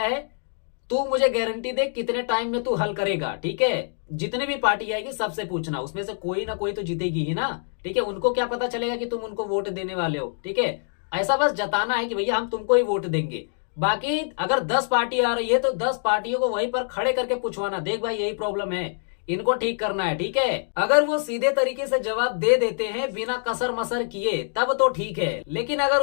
है, तू मुझे गारंटी दे कितने टाइम में तू हल करेगा, ठीक है। जितनी भी पार्टी आएगी सबसे पूछना, उसमें से कोई ना कोई तो जीतेगी ही ना, ठीक है। उनको क्या पता चलेगा कि तुम उनको वोट देने वाले हो, ठीक है। ऐसा बस जताना है कि भैया हम तुमको ही वोट देंगे। बाकी अगर 10 पार्टी आ रही है तो 10 पार्टियों को वहीं पर खड़े करके पूछवाना, देख भाई यही प्रॉब्लम है, इनको ठीक करना है, ठीक है। अगर वो सीधे तरीके से जवाब दे देते हैं बिना कसर मसर किए तब तो ठीक है, लेकिन अगर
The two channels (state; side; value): silent; right; digital silence